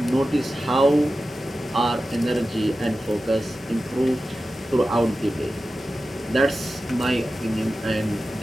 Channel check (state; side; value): normal; both; correlation 0.94